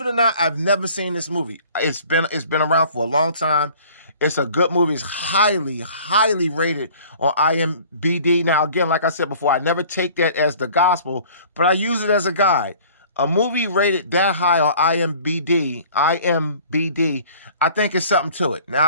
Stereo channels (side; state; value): both; inverted; correlation -0.50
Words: it or not, I've never seen this movie. It's been around for a long time. It's a good movie. It's highly, highly rated on IMDb. Now, again, like I said before, I never take that as the gospel, but I use it as a guide. A movie rated that high on IMDb, I think is something to it.